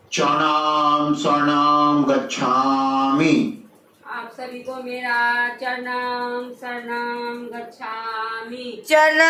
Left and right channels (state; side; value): identical; both; correlation 1.00